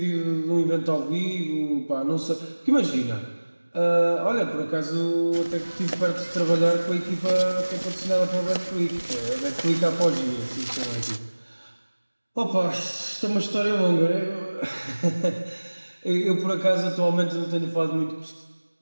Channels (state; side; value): inverted; both; correlation -1.00